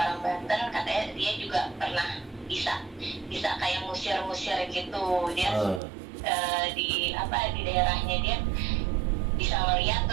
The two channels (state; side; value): drops out; left; at 5.8 s